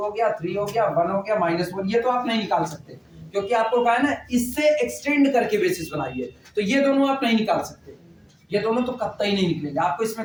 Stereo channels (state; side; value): identical; both; correlation 1.00